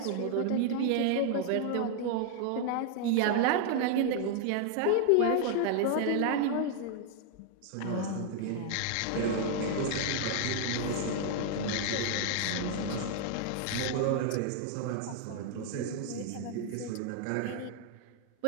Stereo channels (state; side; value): different; both; correlation 0.00